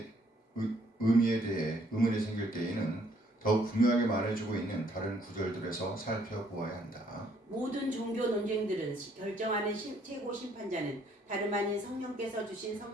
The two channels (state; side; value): normal; both; correlation 0.65